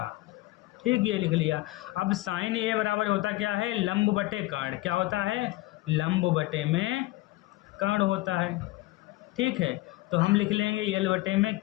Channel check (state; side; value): quieter; right; 19.1 dB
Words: ठीक, ये लिख लिया। अब साइन ए बराबर होता क्या है, लंब बटे कर्ण। क्या होता है, लंब बटे में कर्ण होता है। ठीक है, तो हम लिख लेंगे यल बटे में